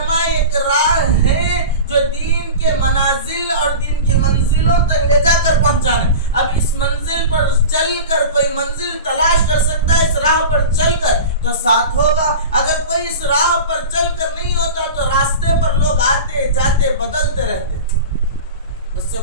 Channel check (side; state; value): both; inverted; correlation -0.31